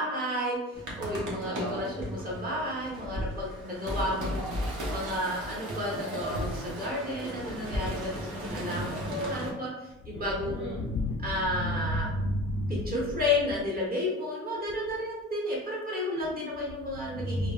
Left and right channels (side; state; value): both; normal; correlation 0.36